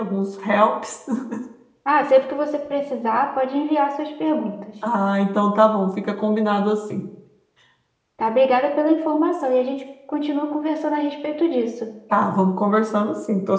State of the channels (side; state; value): both; identical; correlation 1.00